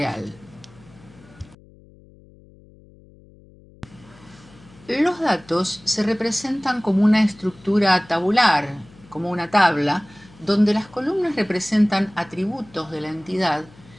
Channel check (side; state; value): left; noise; hum, 25 dB below the sound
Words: Los datos se representan como una estructura tabular, como una tabla, donde las columnas representan atributos de la entidad